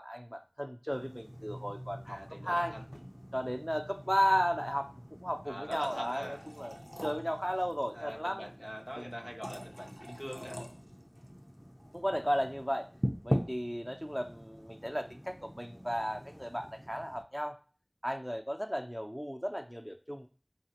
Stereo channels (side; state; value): both; identical; correlation 1.00